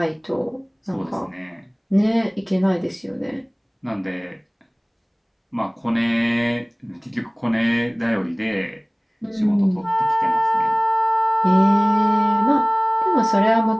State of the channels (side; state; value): both; identical; correlation 1.00